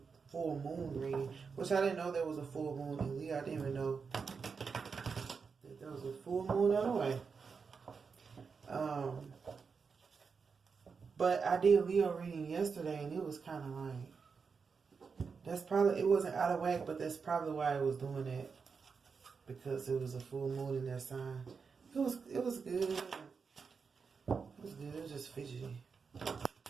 reading, which I didn't know there was a full moon in Leo. I didn't even know that there was a full moon on the way. But I did Leo reading yesterday, and it was kind of like, it wasn't out of whack, but that's probably why I was doing it, because it was a full moon in their sign. It was good. It was good. It was just fidgety. It's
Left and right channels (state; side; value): quieter; left; 5.4 dB